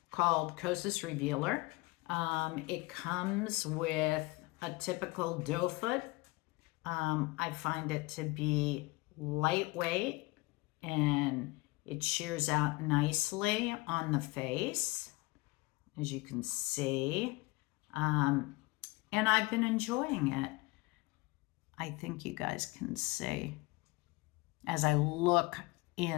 called Kosas Revealer. It comes with a typical doe foot. I find it to be lightweight, and it shears out nicely on the face, as you can see. And I've been enjoying it. I think you guys can see. As I look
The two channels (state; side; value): quieter; right; 23.8 dB